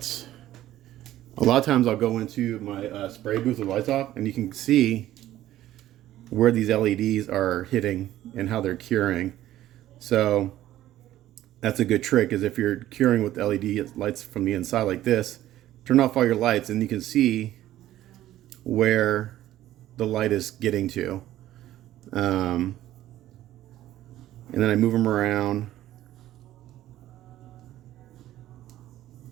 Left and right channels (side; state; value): left; quieter; 13.8 dB